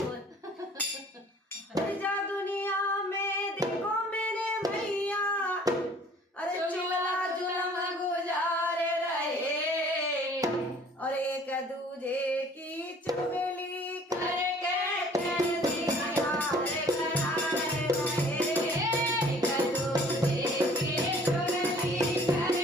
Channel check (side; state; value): both; normal; correlation 0.53